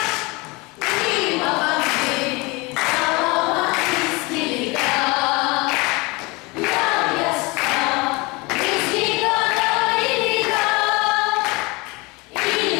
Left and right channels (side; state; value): right; quieter; 25.4 dB